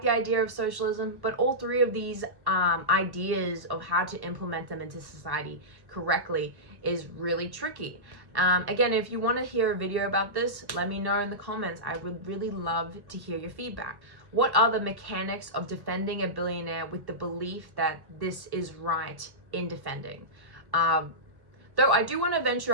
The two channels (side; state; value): left; late; 1.1 ms